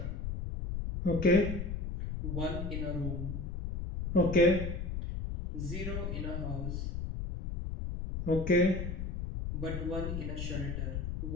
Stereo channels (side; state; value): left; noise; rumble, 4 dB below the sound